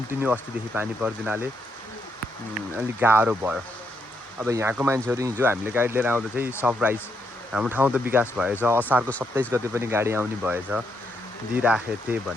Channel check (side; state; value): both; normal; correlation 0.77